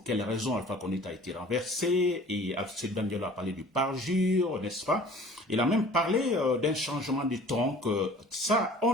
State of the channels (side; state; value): both; normal; correlation 0.48